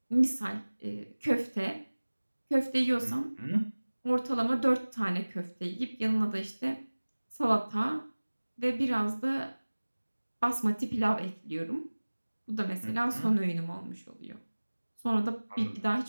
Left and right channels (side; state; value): both; inverted; correlation -1.00